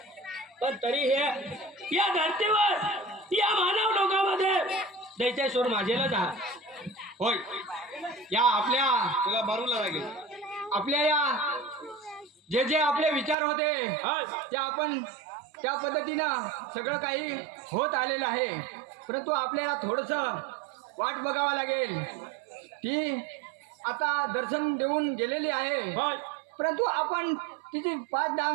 पण तरी हे या धरतीवर या मानव लोकांमध्ये दैत्यासूर माझेला जा. होय, या आपल्या तुला मारूला लागेल. आपल्या या जे जे आपले विचार होते हा, ते आपण त्या पद्धतीनं सगळं काही होत आलेलं आहे. परंतु आपल्याला थोडंसं वाट बघावं लागेल. ती आता दर्शन देऊन गेलेली आहे, होय. परंतु आपण तिची 5-10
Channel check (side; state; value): left; drops out; at 13.4 s